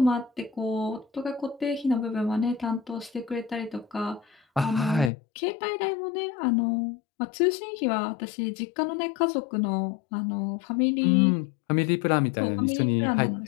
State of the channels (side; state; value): right; drops out; at 5.1 s